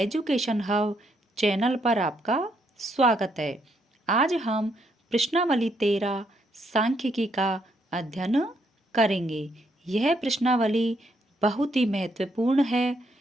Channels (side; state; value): both; normal; correlation 0.74